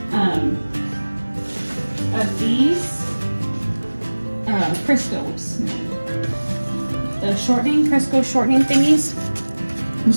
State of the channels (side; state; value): both; inverted; correlation -1.00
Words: of these Crisco's, the shortening, Crisco shortening thingies.